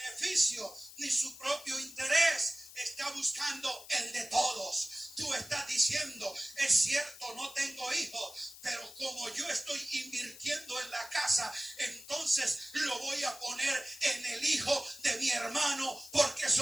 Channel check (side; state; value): left; noise; hiss, 17 dB below the sound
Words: ni su propio interés, está buscando el de todos. Tú estás diciendo, es cierto, no tengo hijos, pero como yo estoy invirtiendo en la casa, entonces lo voy a poner en el hijo de mi hermano, porque